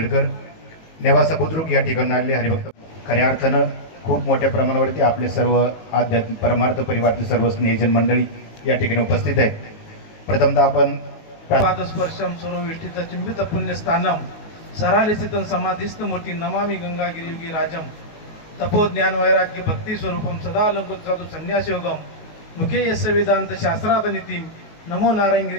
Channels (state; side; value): late; right; 19 ms